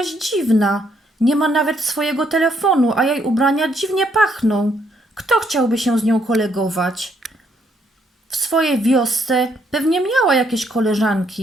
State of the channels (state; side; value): normal; both; correlation 0.72